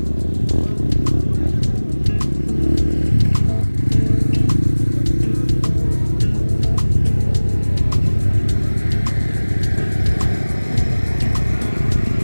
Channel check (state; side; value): inverted; both; correlation -1.00